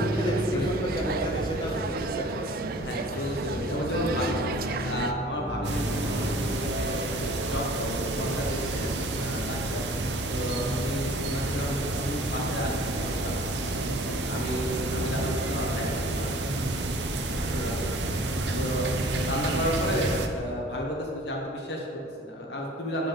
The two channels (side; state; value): both; normal; correlation 0.49